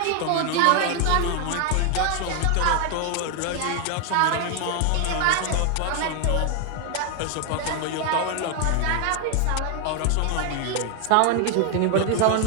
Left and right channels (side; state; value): both; different; correlation 0.00